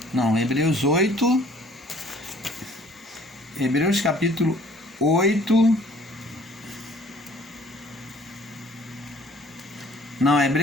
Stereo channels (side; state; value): both; normal; correlation 0.55